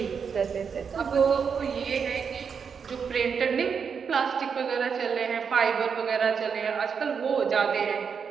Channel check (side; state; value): left; quieter; 6.4 dB